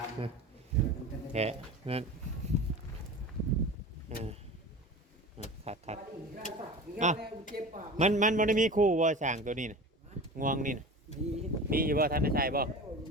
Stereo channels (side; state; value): both; normal; correlation 0.34